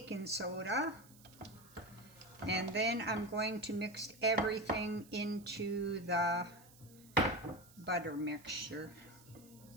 soda, and then I'm going to mix everything into the butter mixture.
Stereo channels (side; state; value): right; noise; hiss, 23 dB below the sound